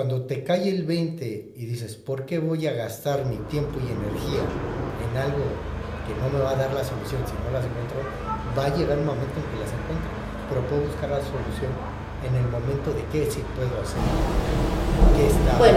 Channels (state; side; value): identical; both; correlation 1.00